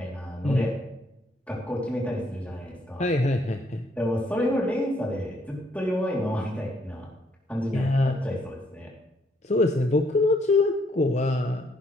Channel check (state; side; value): normal; both; correlation 0.70